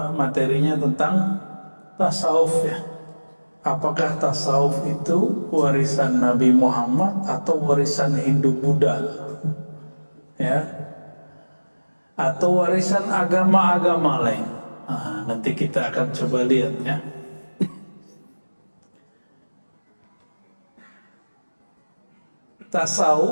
materinya tentang tasawuf ya. Apakah tasawuf itu warisan Nabi Muhammad atau warisan Hindu Buddha? Ya. Atau warisan agama-agama lain? Nah, nanti kita akan coba lihat ya.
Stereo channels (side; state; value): both; inverted; correlation -1.00